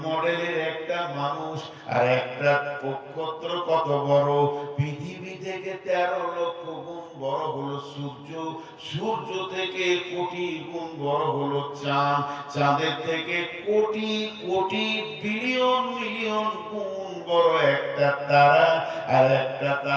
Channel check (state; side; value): identical; both; correlation 1.00